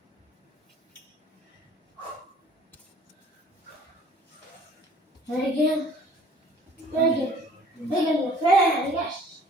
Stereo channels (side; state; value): both; normal; correlation 0.53